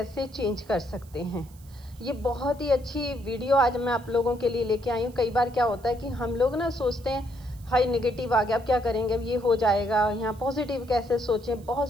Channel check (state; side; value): noise; right; hiss, 26 dB below the sound